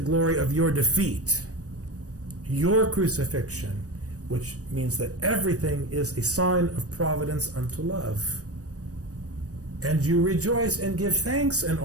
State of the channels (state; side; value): late; left; 0.66 ms